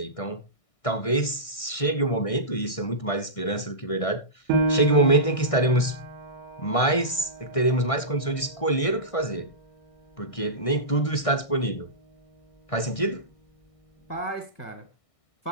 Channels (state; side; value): late; right; 1.6 ms